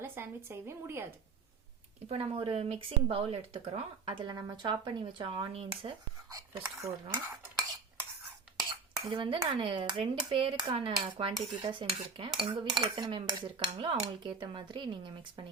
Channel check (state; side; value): quieter; left; 4.9 dB